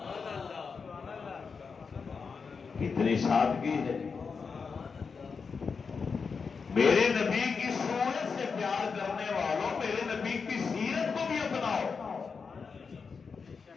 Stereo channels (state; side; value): quieter; right; 5.3 dB